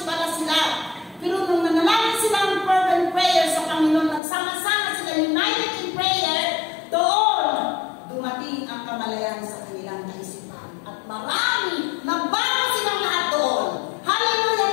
pala sila. Pero nung nanalangin sila ng fervent prayer sa Panginoon, nagsama-sama sila united in prayer, doon dumating ang kamalayan sa kanilang kaisipan. At marami, nabago silang lahat doon. Hallelujah!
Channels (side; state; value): right; drops out; at 4.2 s